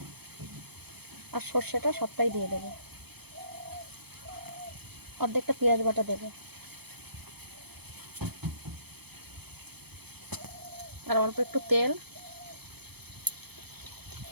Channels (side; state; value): left; late; 0.97 ms